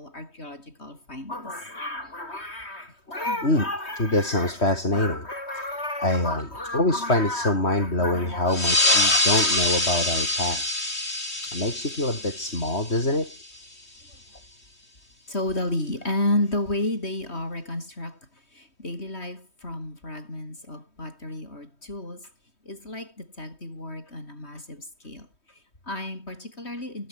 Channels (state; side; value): late; right; 3.2 ms